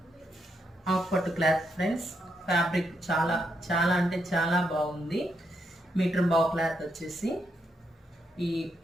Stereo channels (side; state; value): both; normal; correlation 0.80